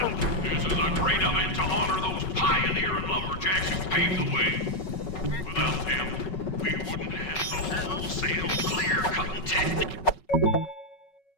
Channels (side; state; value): right; late; 5.4 ms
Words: This is a great event to honor those pioneering lumberjacks who paved the way. Without them, we wouldn't have the wholesale clear-cutting tech.